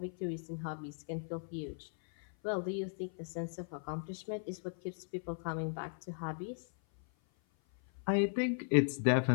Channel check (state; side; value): silent; right; 53 dB below the other